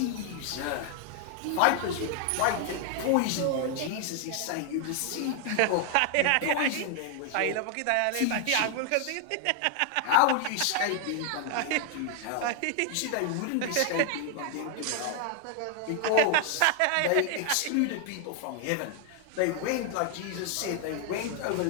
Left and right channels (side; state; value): both; different; correlation 0.00